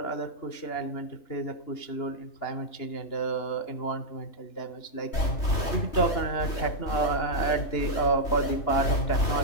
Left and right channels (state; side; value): late; right; 3.1 ms